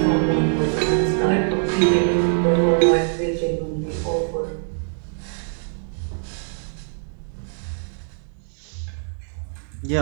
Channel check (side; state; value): left; silent; digital silence